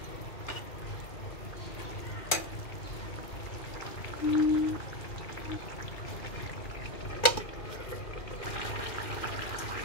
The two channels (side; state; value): right; late; 2.4 ms